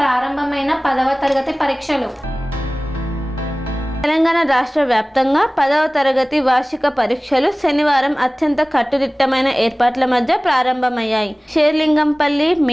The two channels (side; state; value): both; normal; correlation 0.98